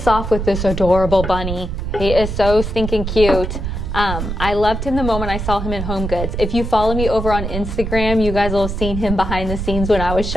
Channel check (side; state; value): right; noise; rumble, 4 dB below the sound